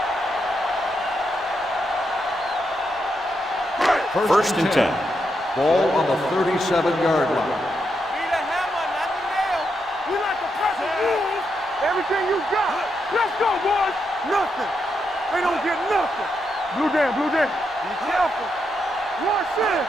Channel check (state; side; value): normal; both; correlation 0.82